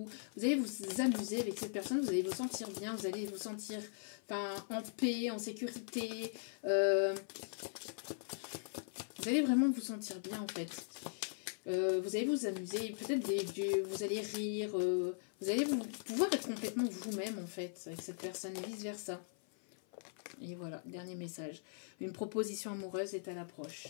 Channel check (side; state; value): right; silent; 51 dB below the other